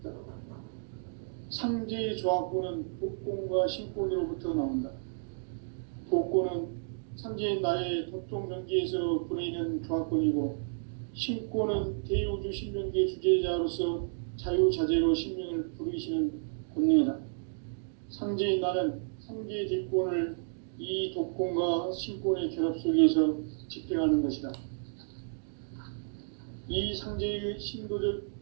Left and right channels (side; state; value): left; silent; digital silence